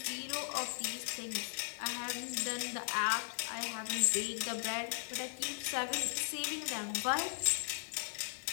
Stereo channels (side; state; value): right; silent; digital silence